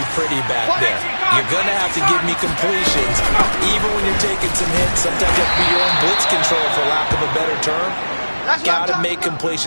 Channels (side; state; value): both; inverted; correlation -1.00